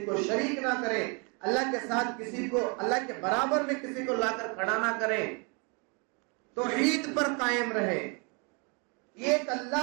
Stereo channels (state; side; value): quieter; left; 33.6 dB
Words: کو شریک نہ کریں، اللہ کے ساتھ کسی کو اللہ کے برابر میں کسی کو لا کر کھڑا نہ کریں، توحید پر قائم رہیں. ایک